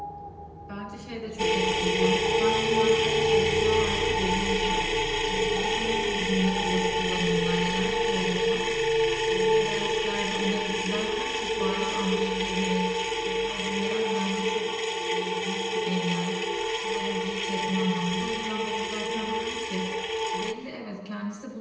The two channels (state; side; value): identical; both; correlation 1.00